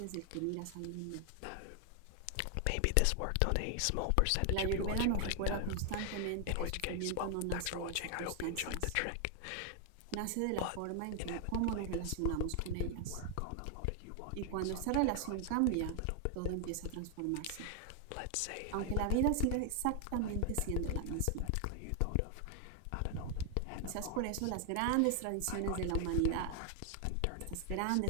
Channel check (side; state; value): both; different; correlation 0.00